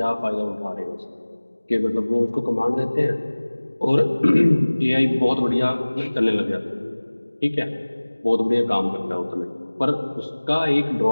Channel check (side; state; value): both; inverted; correlation -1.00